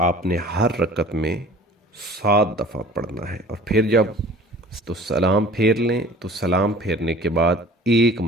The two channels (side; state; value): both; normal; correlation 0.46